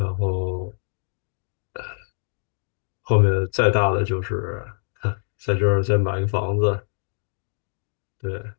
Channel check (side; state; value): right; silent; 61 dB below the other